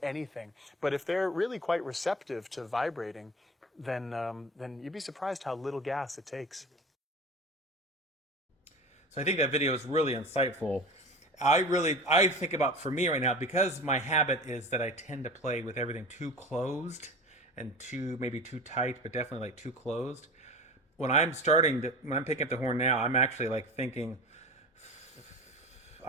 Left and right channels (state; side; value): normal; both; correlation 0.34